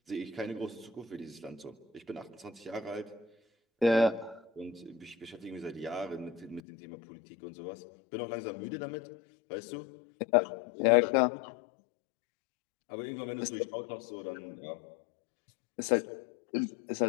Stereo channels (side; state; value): right; drops out; at 6.6 s